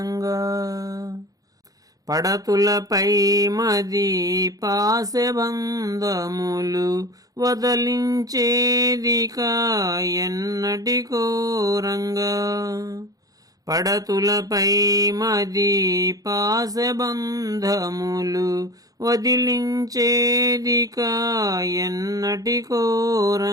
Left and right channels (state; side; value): late; left; 0.17 ms